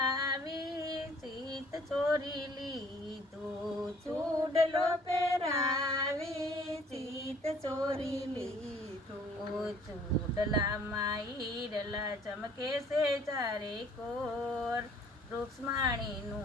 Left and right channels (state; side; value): normal; both; correlation 0.57